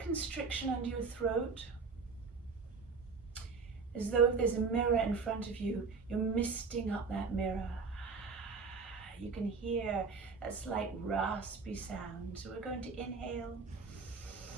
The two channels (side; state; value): left; quieter; 4.8 dB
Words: constriction under your throat, as though if there's a mirror in front of you, you're misting up that mirror. You can hear that slight raspy sound. So we're going to inhale